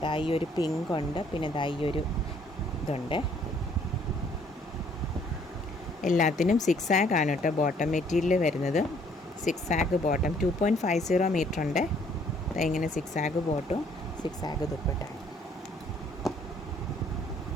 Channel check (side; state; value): both; normal; correlation 0.63